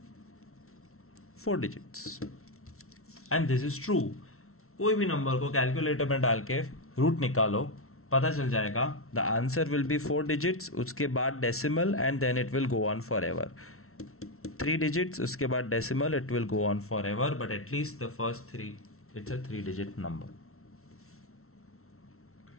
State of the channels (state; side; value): late; right; 0.63 ms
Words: 4 digits. And this is true. कोई भी नंबर को कैलकुलेटर में डाल के रूट निकालो, पता चल जाएगा. The answer will be 4 digits, उसके बाद decimal and then it will go on forever. 3 digits, उसके बाद decimal, it will go on forever, but at least the first 3, it's a 3-digit number.